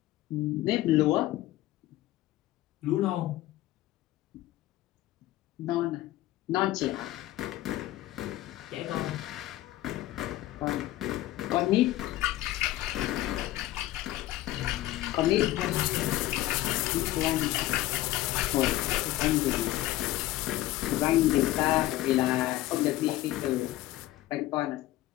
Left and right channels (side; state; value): right; quieter; 15.7 dB